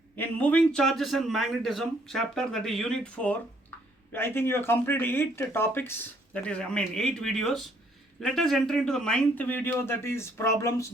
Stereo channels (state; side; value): normal; both; correlation 0.66